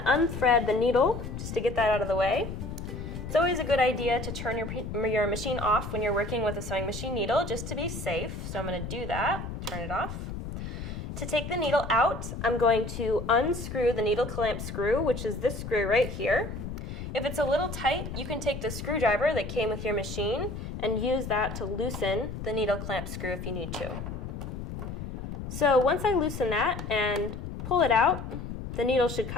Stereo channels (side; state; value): left; noise; rumble, 7 dB below the sound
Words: unthread the needle just to get that out of the way. It's always a good idea to turn your machine off when you're working with a sewing machine needle just to be safe, so I'm going to do that, turn it off. To take the needle out, I'm going to unscrew the needle clamp screw, which is this screw right here. If it's a little tight, you can take the screwdriver that came with your machine and use that to loosen the needle clamp screw if you need to. So once I loosen that and pull it out, the needle should